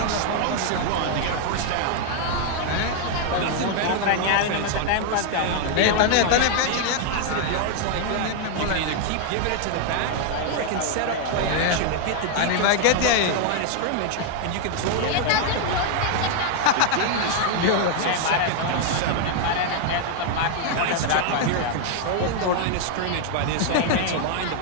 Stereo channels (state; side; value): different; both; correlation 0.00